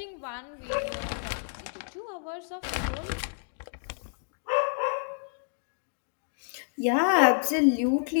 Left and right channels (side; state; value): right; silent; digital silence